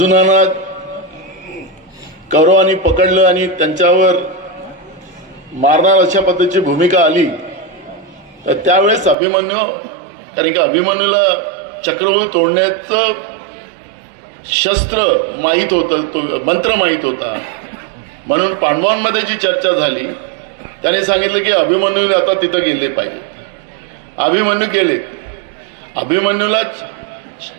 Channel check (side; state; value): left; drops out; at 9.2 s